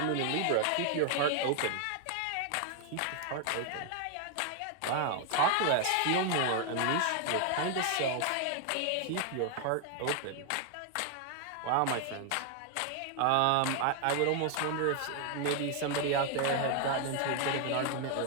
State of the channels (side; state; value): both; different; correlation 0.00